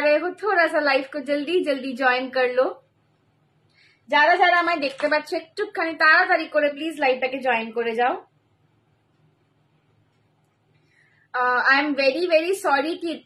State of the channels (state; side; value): identical; both; correlation 1.00